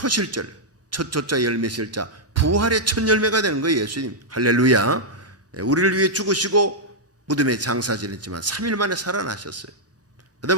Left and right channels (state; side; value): normal; both; correlation -0.06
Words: 첫 조자 열매 실자, 부활의 첫 열매가 되는 거예요. 예수님. 할렐루야. 우리를 위해 죽으시고 무덤에 장사 지냈지만 3일 만에 살아나셨어요. 그